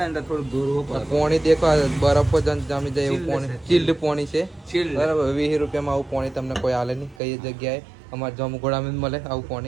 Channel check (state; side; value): drops out; left; at 7.2 s